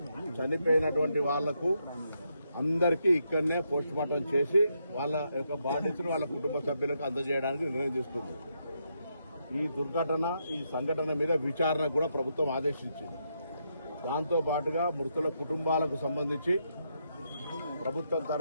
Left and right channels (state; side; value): inverted; both; correlation -0.80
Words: చనిపోయినటువంటి వాళ్లకు అందరికీ ఇక్కడనే పోస్ట్ మార్టం చేసి వాళ్ళ యొక్క బాధ్యతను వాళ్ళ కుటుంబ సభ్యులకు అందజేయడానికి నిర్ణయం తీసుకుంది. ఈ దుర్ఘటన ఈ సంఘటన మీద విచారణ కూడా ప్రభుత్వం ఆదేశించింది. దాంతో పాటుగా మృతుల కుటుంబాలకు సంబంధించి ప్రభుత్వం